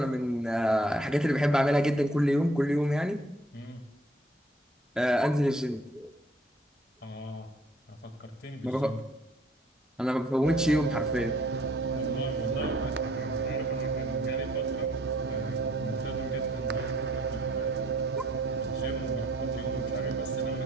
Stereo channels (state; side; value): normal; both; correlation 0.61